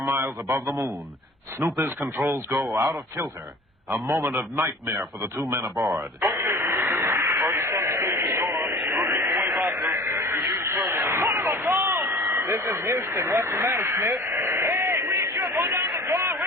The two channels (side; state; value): both; normal; correlation 0.42